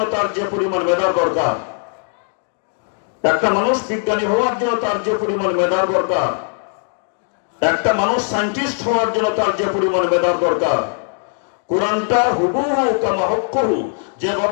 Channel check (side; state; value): right; silent; 55 dB below the other